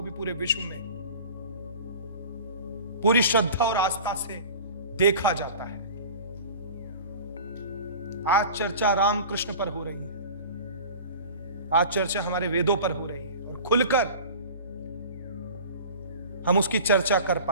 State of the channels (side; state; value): both; inverted; correlation -0.38